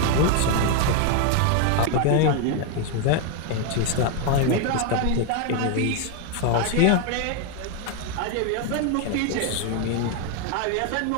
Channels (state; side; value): different; both; correlation 0.01